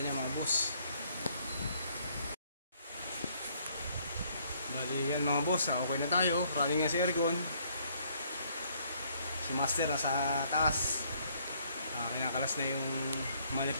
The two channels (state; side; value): inverted; both; correlation -0.66